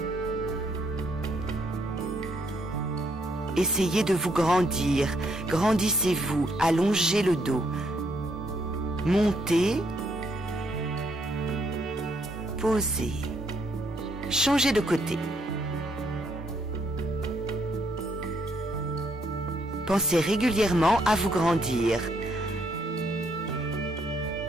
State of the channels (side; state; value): both; normal; correlation 0.72